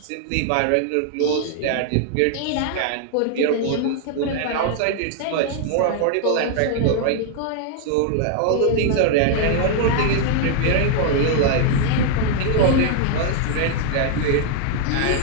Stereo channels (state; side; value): different; both; correlation 0.00